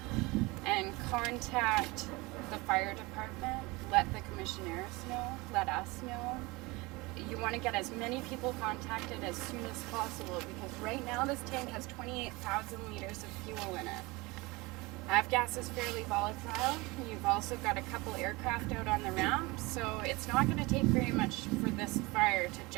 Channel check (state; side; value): quieter; left; 23.5 dB